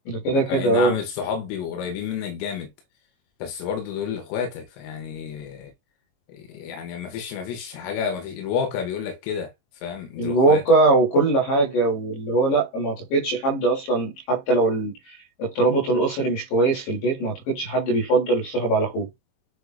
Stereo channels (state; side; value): late; right; 22 ms